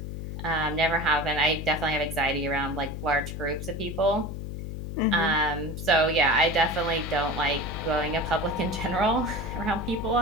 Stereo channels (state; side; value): noise; left; hum, 7 dB below the sound